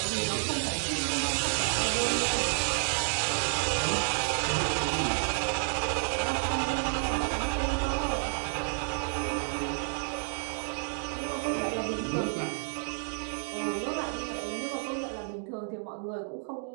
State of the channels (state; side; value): silent; left; 58 dB below the other